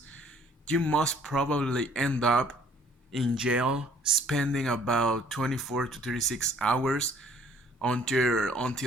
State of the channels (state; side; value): normal; both; correlation 0.58